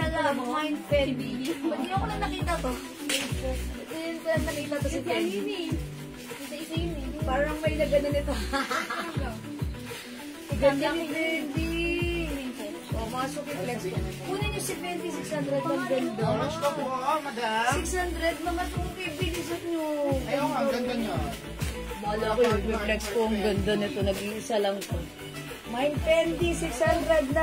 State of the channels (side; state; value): both; identical; correlation 1.00